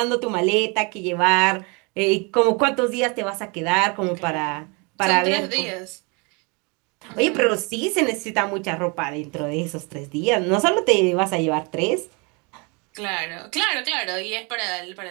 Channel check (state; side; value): quieter; left; 31.0 dB